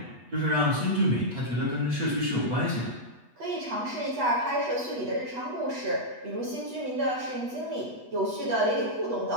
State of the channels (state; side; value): late; left; 8.2 ms